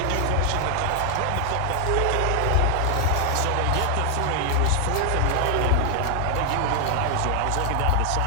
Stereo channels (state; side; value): different; both; correlation 0.00